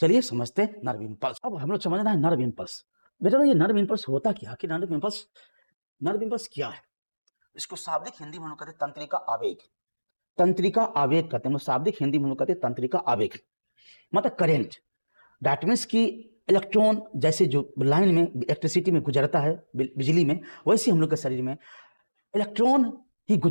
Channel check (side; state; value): both; inverted; correlation -1.00